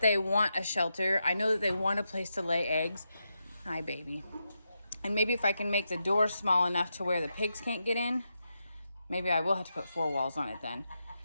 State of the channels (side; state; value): both; inverted; correlation -0.86